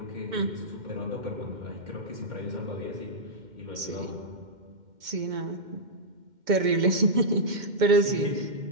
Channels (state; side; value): late; left; 2.1 ms